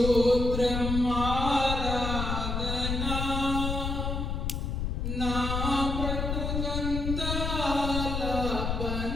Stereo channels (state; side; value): noise; left; rumble, 2 dB below the sound